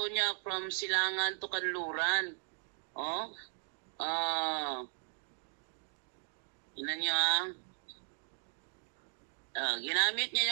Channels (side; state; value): left; silent; digital silence